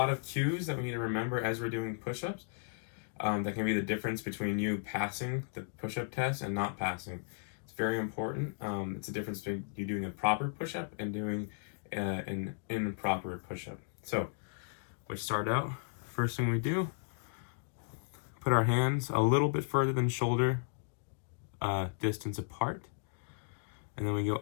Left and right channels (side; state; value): right; silent; digital silence